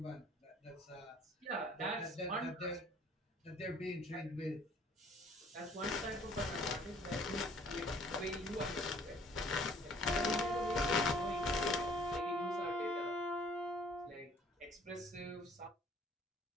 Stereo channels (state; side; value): normal; both; correlation 0.57